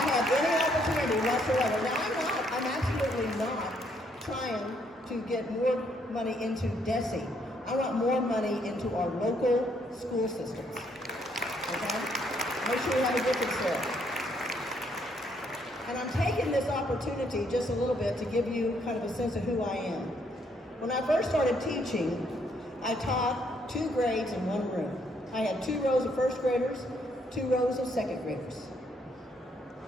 any opportunity whatsoever. Now, I'm absolutely not trying to get more money into DESE. I want more money into our local school systems. Okay? Make sure we have a difference there. And I'm taking this opportunity just a little bit to give you kind of a sense of who I am. When I first started teaching, I taught 2 grades in 1 room. I had 2 rows of first graders, 2 rows of second graders.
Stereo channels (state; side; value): normal; both; correlation 0.71